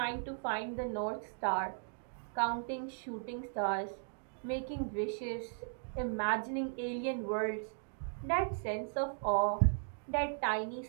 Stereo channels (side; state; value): left; silent; digital silence